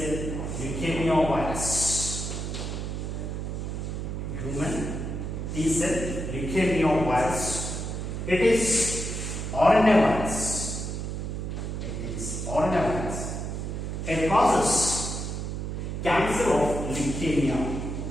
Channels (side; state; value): right; noise; hum, 4 dB below the sound